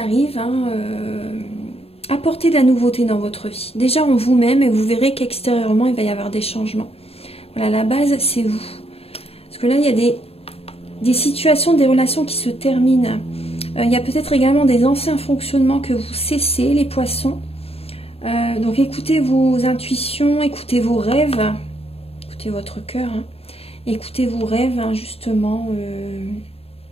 Hein, apportez de la nouveauté dans votre vie. Déjà en vous-même et vous verrez qu'extérieurement, il va y avoir des changements. Voilà, la base, c'est vous. Parce que là, il y a des situations, des relations qui se terminent. Il y a peut-être également des anciens fonctionnements que vous cessez, les poissons. Donc écoutez vos intuitions, écoutez vos rêves. Écoutez votre cœur. Hein. Écoutez vos rêves, hein, justement.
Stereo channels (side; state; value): right; late; 0.29 ms